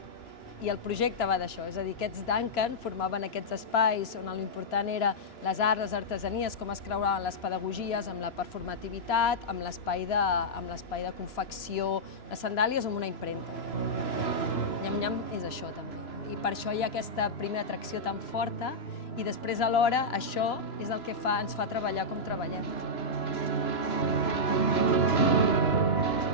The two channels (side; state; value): right; late; 3.0 ms